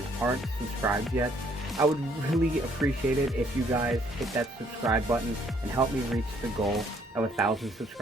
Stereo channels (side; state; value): both; normal; correlation 0.65